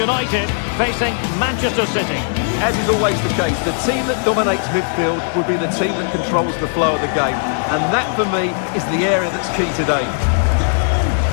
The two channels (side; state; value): right; silent; digital silence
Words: facing Manchester City. As is always the case, the team that dominates midfield will be the team that controls the flow of the game. And that, for me, is the area that's key today.